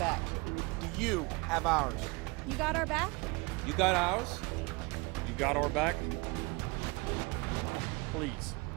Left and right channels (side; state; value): left; quieter; 26.6 dB